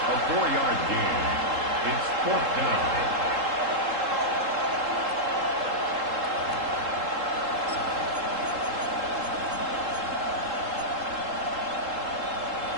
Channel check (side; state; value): left; late; 3.7 ms